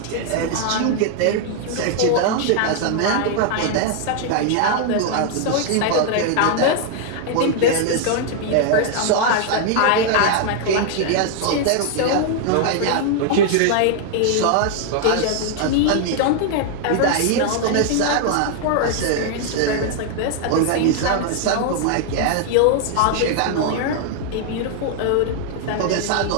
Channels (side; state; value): both; different; correlation 0.00